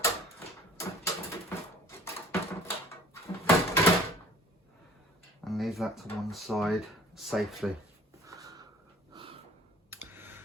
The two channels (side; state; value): both; normal; correlation 0.50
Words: And leave that to one side safely.